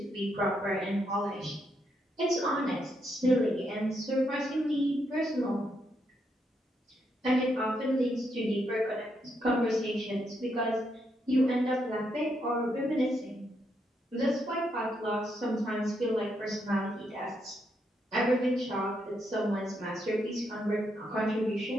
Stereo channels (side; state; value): both; normal; correlation 0.79